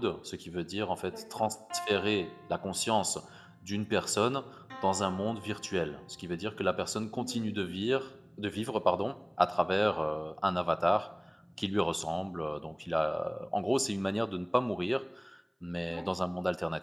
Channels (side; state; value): both; identical; correlation 1.00